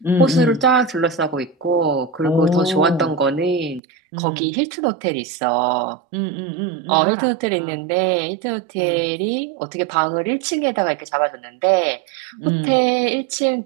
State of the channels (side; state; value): left; drops out; at 3.8 s